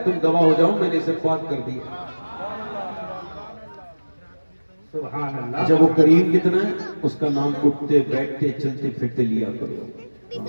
تم گواہ ہو جاؤ میں نے اسے پاک کر دیا۔ سبحان اللہ۔ جب وہ کریم کتنا ہے، اس کا نام اٹھتے بیٹھتے چلتے پھرتے لیا کرو۔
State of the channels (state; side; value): inverted; both; correlation -1.00